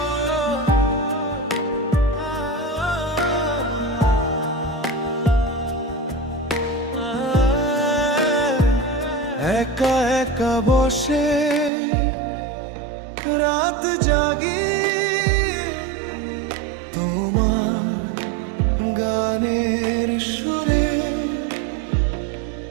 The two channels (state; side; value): drops out; left; at 11.7 s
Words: একা একা বসে রাত জাগি, তোমার গানের সুরে,